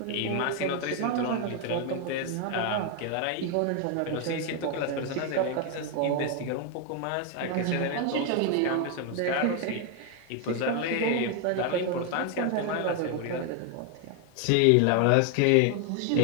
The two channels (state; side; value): different; both; correlation 0.01